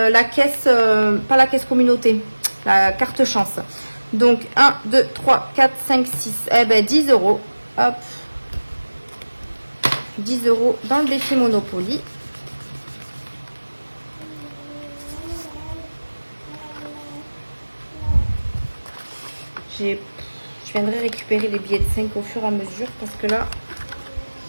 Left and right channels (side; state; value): both; inverted; correlation -1.00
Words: la caisse, pas la caisse communauté, la carte chance. Donc, 1, 2, 3, 4, 5, 6. Eh ben, 10 €. Hop. 10 € dans le défi Monopoly. je viendrai récupérer les billets de 5 au fur et à mesure parce que là,